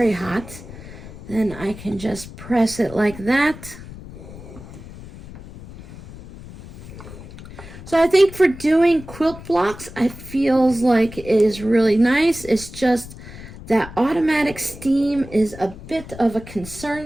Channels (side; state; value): left; noise; rumble, 15 dB below the sound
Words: hot, then I can just press it like that. So I think for doing quilt blocks, I feels like it is really nice. It's just that automatic steam is a bit of a